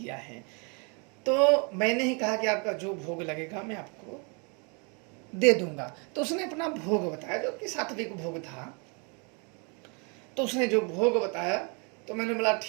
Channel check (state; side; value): quieter; left; 34.1 dB